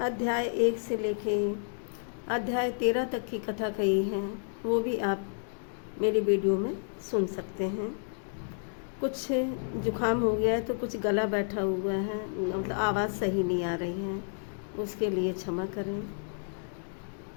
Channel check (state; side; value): silent; right; digital silence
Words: 1 से लेके अध्याय 13 तक की कथा कही है, वो भी आप मेरी वीडियो में सुन सकते हैं। कुछ जुकाम हो गया है तो कुछ गला बैठा हुआ है, मतलब आवाज़ सही नहीं आ रही है, उसके लिए क्षमा करें